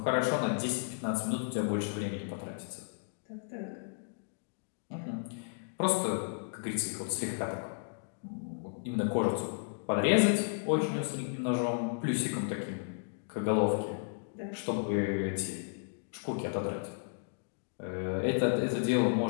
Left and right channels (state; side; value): silent; right; digital silence